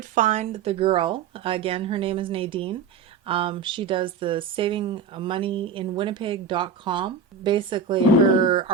find the girl. Again, her name is Nadine. She does the Saving Money in Winnipeg.com. Basically, her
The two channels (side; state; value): left; quieter; 5.6 dB